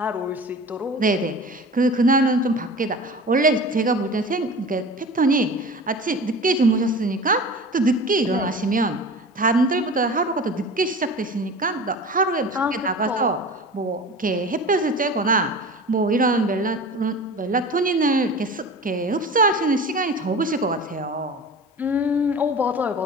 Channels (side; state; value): both; normal; correlation 0.36